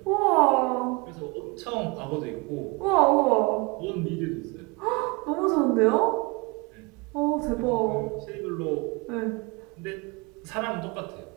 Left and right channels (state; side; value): quieter; left; 27.4 dB